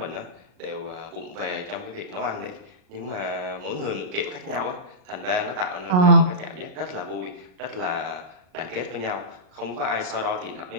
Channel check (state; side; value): late; left; 38 ms